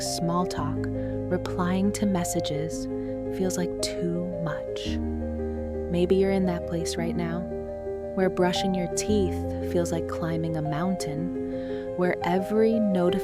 small talk, replying to messages feels like too much. Maybe you're in that place right now, where brushing your teeth feels like climbing a mountain, where every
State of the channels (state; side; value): identical; both; correlation 1.00